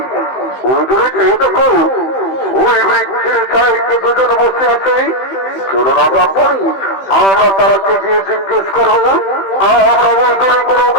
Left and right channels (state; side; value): late; right; 15 ms